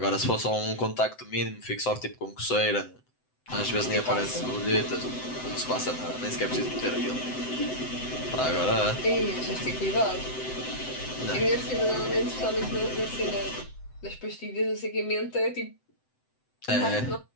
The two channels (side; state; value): right; late; 7.9 ms